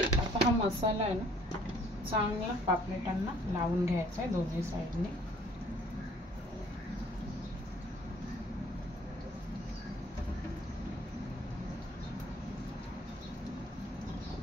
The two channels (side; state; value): both; normal; correlation 0.58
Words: आता हा मसाला आहे ना, चांगला पापलेटांना लावून घ्यायचा आहे दोन्ही साइडने।